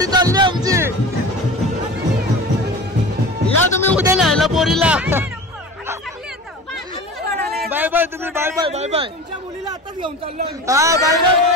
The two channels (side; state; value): both; normal; correlation 0.35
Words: चालली आमची. या तुम्ही उद्या न्यायला पोरीला. बाय बाय तुम्ही. Bye bye. Bye bye. तुमच्या मुलीला आताच घेऊन चाललो. हा बाय बाय.